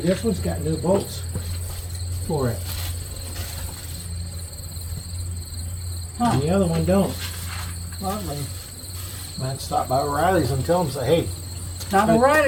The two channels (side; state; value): both; identical; correlation 1.00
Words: this one's got new bolts for it. Huh. And the other one don't. Lovely. Might stop by O'Reilly's and tell them, say, hey. Not